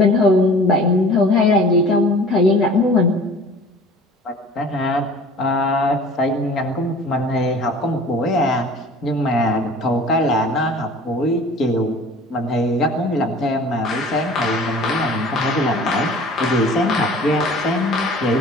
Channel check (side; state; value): both; normal; correlation 0.45